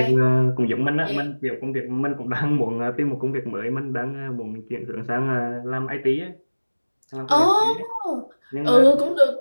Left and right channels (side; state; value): both; inverted; correlation -1.00